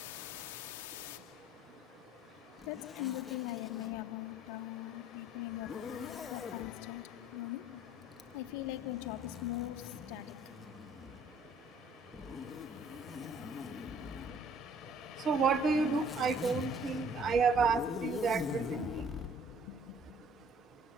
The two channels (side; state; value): both; normal; correlation 0.56